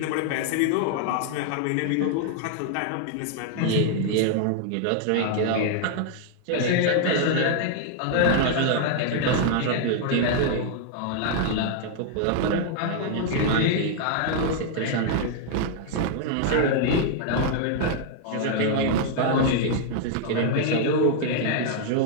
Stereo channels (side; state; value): both; different; correlation 0.00